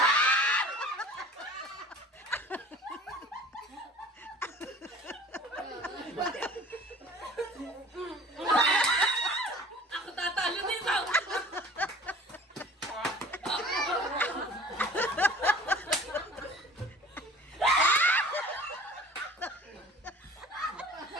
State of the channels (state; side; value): normal; both; correlation 0.45